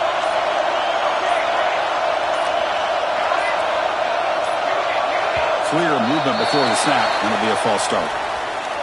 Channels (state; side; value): identical; both; correlation 1.00